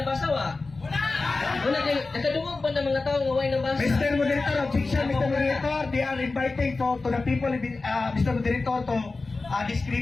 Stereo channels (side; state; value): right; quieter; 3.7 dB